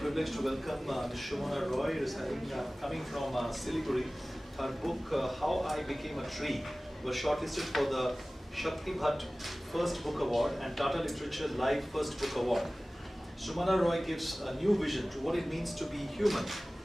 privilege to welcome Ms. Sumana Roy, who is coming from Siliguri. Her book, How I Became a Tree, was shortlisted for the Shakti Bhatt First Book Award and Tata Literature Live First Book Award. Sumana Roy gives a new vision to what it means to be human,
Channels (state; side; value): normal; both; correlation 0.98